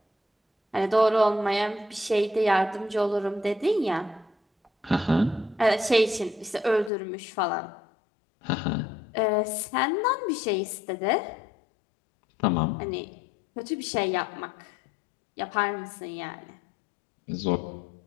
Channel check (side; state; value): right; drops out; at 6.9 s